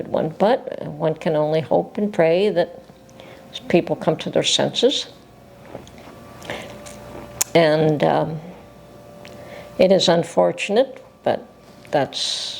one, but one can only hope and pray that people come to their senses. And it is unfortunate, but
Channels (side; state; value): both; identical; correlation 1.00